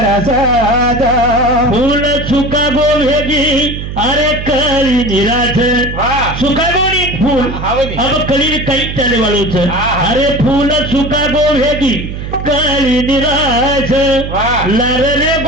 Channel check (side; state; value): right; noise; hum, 7 dB below the sound